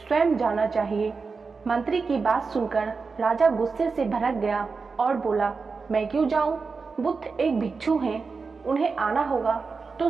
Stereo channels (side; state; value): left; quieter; 4.7 dB